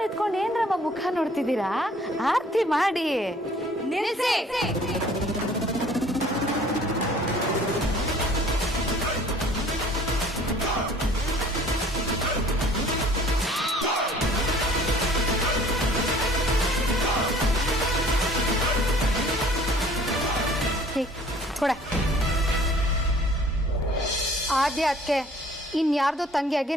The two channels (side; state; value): both; normal; correlation 0.53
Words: ನಿಂತ್ಕೊಂಡು ಏನ್ರಮ್ಮ ಮುಖ ನೋಡ್ತಿದ್ದೀರಾ? ಆರತಿ ಮಾಡಿ. ನಿಲ್ಸಿ. ಕೊಡೆ. ಆದ್ಯ ಅದಕ್ಕೆ ಇನ್ಯಾರ್ದೋ ತಂಗಿಯಾಗಿ